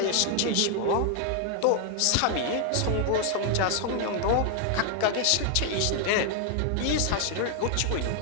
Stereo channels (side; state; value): both; different; correlation 0.00